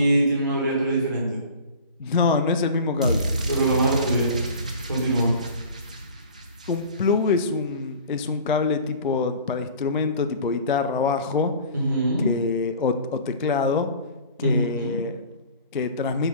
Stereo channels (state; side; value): inverted; both; correlation -0.42